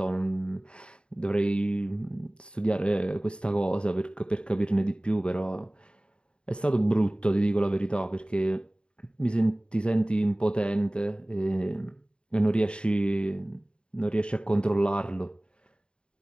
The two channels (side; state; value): right; late; 0.053 ms